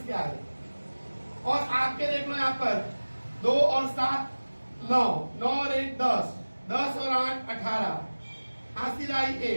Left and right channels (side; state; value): both; inverted; correlation -1.00